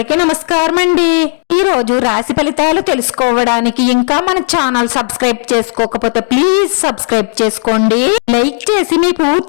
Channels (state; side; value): silent; right; 56 dB below the other